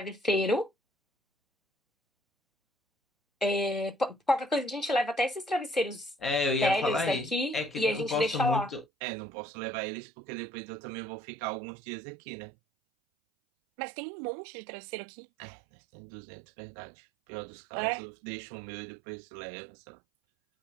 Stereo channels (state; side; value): drops out; left; at 8.8 s